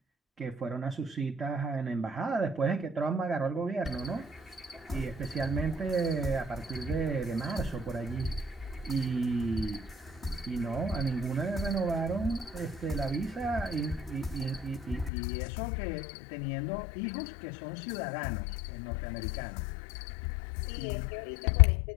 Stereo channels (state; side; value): drops out; right; at 15.1 s